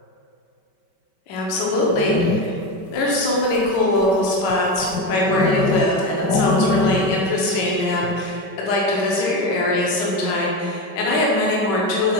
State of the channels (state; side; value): late; right; 5.2 ms